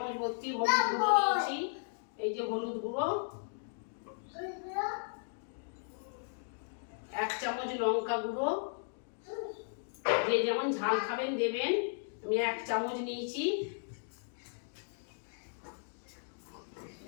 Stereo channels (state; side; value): silent; right; digital silence